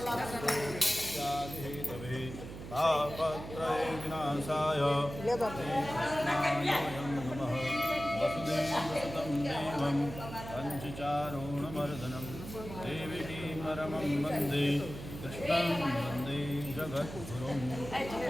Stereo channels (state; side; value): noise; right; hum, 11 dB below the sound